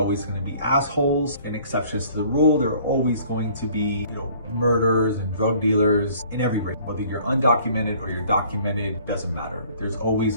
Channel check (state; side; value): inverted; both; correlation -0.55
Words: going to be assholes and exceptions to the rule. There are always going to be, you know, murderers and drug dealers in every race. Whether you're undocumented or you're documented, doesn't matter. There's always